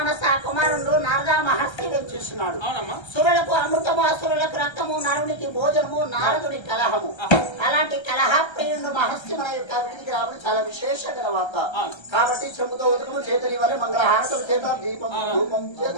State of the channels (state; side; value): late; right; 1.3 ms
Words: కుమారుడు నారద మహర్షి వచ్చేస్తున్నాడు. అవునమ్మా. సురులకు అమృతము, అసురులకు రక్తము, నరునికి భోజనము, నారదుని కలహము. అలాంటి కలహ ప్రియుడు మహర్షి మన యొక్క వీధికి రావడం చాలా విశేషమైన వార్త. కాబట్టి చెంబుతో ఉదకము చేత వల్ల మంగళహారతం చేత దీపం ధూపం